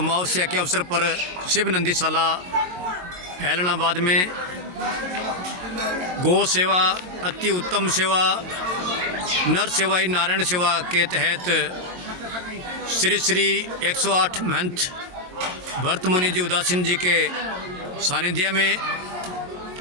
के अवसर पर शिव नंदीशाला ऐलनाबाद में गौ सेवा, अति उत्तम सेवा, नर सेवा ही नारायण सेवा के तहत श्री श्री 108 महंत भरत मुनि जी उदासीन जी के सानिध्य में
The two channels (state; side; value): late; left; 22 ms